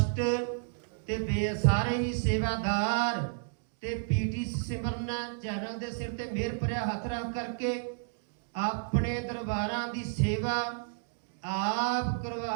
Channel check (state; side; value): silent; left; digital silence